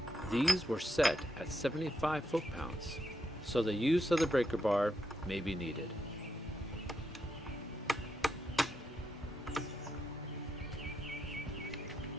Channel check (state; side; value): normal; both; correlation 0.83